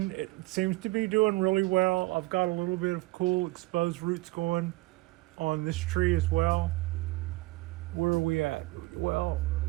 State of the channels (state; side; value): quieter; left; 21.4 dB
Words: seems to be doing really well. I've got a little bit of cool exposed roots going on this tree as well. Where are we at? Well,